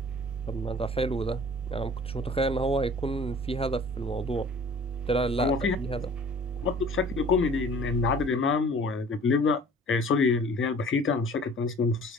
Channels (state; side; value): normal; both; correlation 0.48